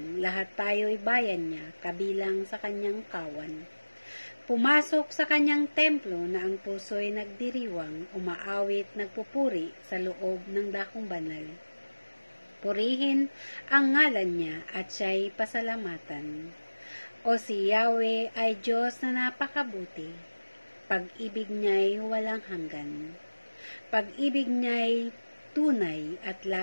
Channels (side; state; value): both; inverted; correlation -1.00